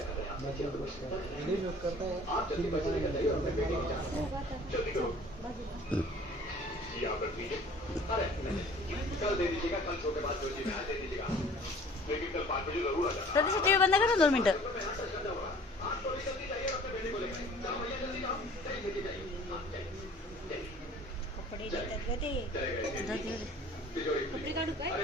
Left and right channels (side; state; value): both; normal; correlation 0.49